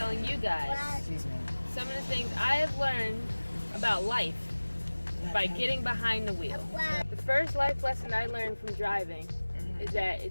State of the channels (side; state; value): both; inverted; correlation -1.00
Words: you guys some of the things I have learned about life by getting behind the wheel. The first life lesson I learned from driving is that